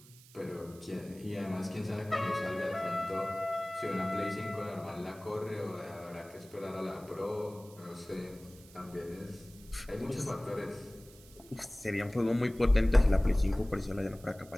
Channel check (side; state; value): right; noise; hiss, 22 dB below the sound